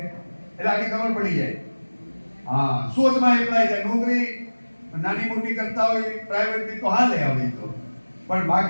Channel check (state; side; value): inverted; both; correlation -1.00